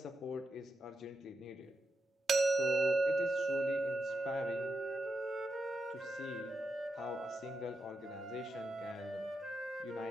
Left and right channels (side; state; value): both; normal; correlation 0.86